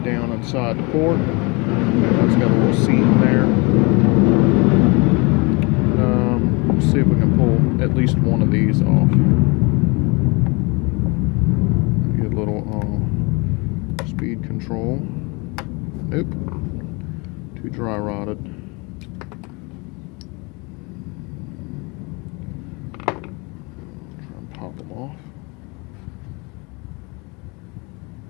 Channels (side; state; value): right; quieter; 28.4 dB